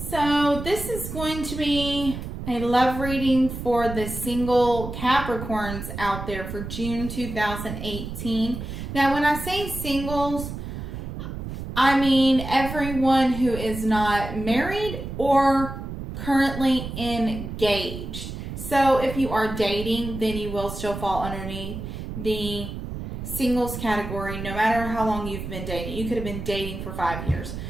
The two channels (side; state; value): right; noise; rumble, 7 dB below the sound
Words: this is going to be a love reading for the single Capricorns out there for June 2018. Now when I say singles, I mean everyone who is not married or currently engaged. So if you are dating, then you will still fall underneath the singles category, no matter how long you've been dating. You could have been dating for 5 years.